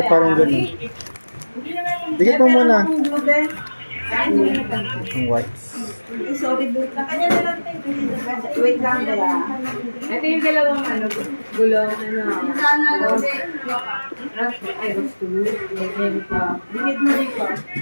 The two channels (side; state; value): both; inverted; correlation -1.00